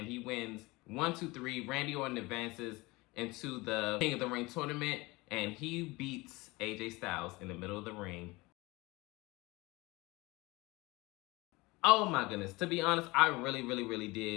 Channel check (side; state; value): right; quieter; 22.7 dB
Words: he wins 1, 2, 3. Randy Orton advances into the King of the Ring tournament, and he beats AJ Styles in the middle of the ring. Oh my goodness. To be honest, I really, really, really